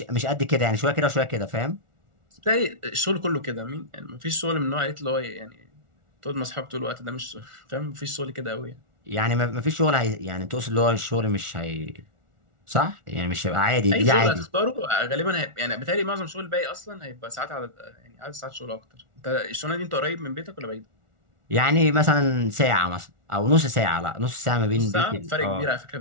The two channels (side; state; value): left; late; 1.4 ms